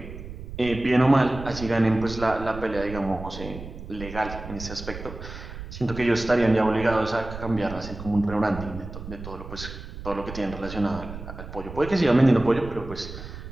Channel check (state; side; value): noise; right; rumble, 11 dB below the sound